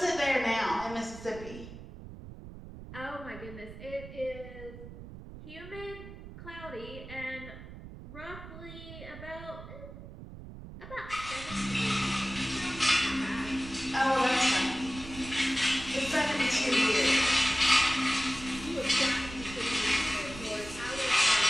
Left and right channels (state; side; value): noise; right; rumble, 14 dB below the sound